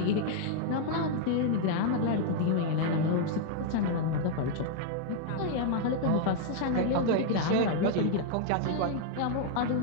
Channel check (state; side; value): different; both; correlation -0.01